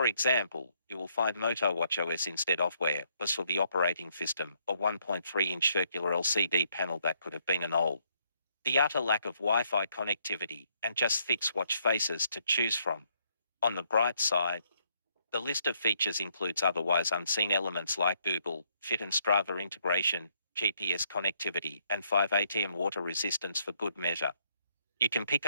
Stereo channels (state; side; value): inverted; both; correlation -0.71